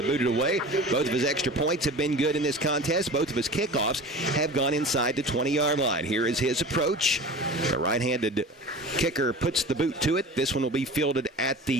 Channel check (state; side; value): normal; both; correlation 0.37